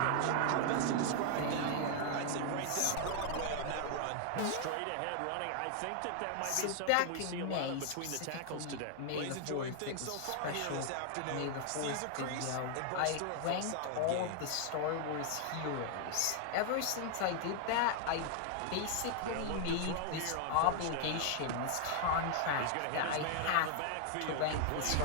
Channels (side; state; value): both; different; correlation 0.00